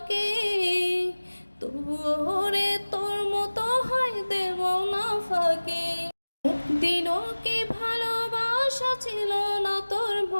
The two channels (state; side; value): inverted; both; correlation -1.00